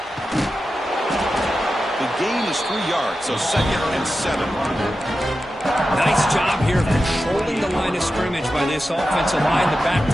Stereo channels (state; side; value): normal; both; correlation 0.91